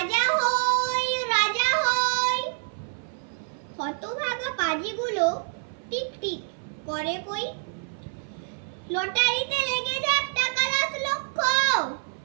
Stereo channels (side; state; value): left; silent; 59 dB below the other